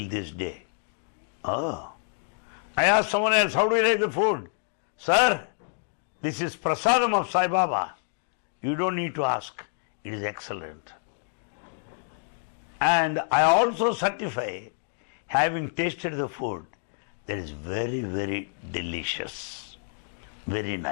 this day. Oh. I asked someone else, how do you like the food? Sir, this is prasadam of Sai Baba. You don't need to ask. It is excellent. And I also certify, having tasted the food, that is very, very delicious. Very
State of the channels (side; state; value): right; silent; digital silence